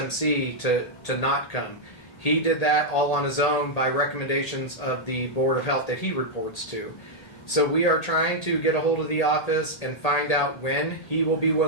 to not come. He did that all on his own by recommendations of the Board of Health that he reports to. So we are trying to get a hold of the office and find out when he will be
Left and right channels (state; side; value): late; right; 1.8 ms